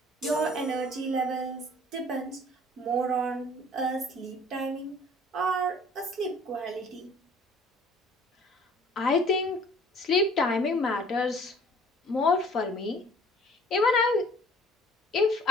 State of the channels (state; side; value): normal; both; correlation 0.53